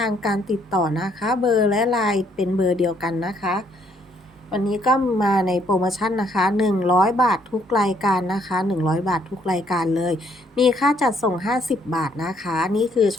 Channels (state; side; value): normal; both; correlation 0.68